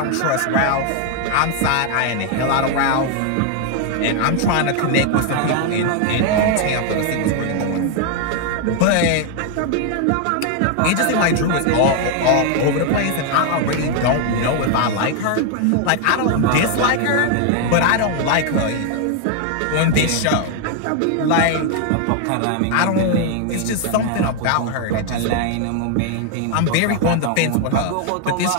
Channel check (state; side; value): different; both; correlation 0.00